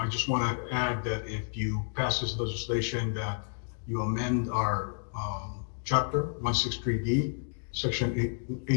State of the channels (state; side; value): silent; right; digital silence